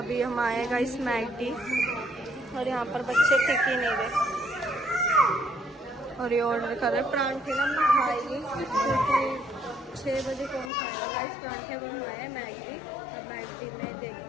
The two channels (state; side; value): drops out; right; at 10.7 s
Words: हम आए हैं गाइस मैगडी, और यहाँ पर बच्चे टिक ही नहीं रहे, और ये ऑर्डर कर रहे हैं परांठे ना। हमने खाएंगे क्योंकि 6 बजे कौन खाएगा गाइस परांठे। अब हम आए हैं मैगडी, अब मैगडी में